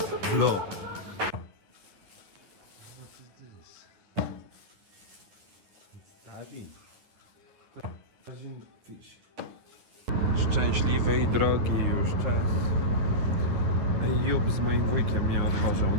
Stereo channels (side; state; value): left; late; 10 ms